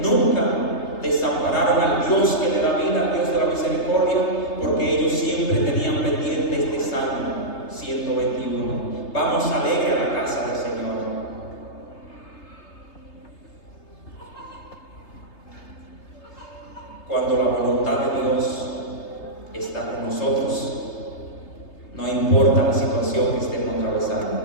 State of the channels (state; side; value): late; right; 3.3 ms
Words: nunca desampararon al Dios que le da vida, al Dios de la misericordia, porque ellos siempre tenían pendiente este Salmo 121. Vamos alegre a la casa del Señor. Cuando la voluntad de Dios está con nosotros, no importa la situación que estemos atravesando,